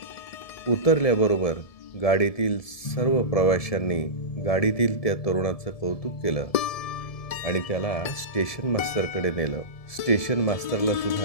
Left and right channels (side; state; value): right; late; 1.7 ms